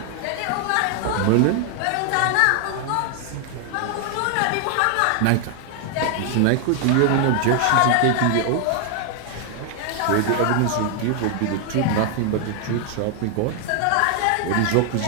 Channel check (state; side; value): different; both; correlation 0.00